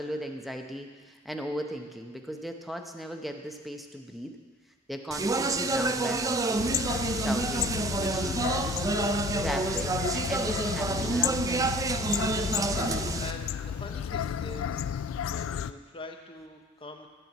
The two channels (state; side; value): normal; both; correlation 0.48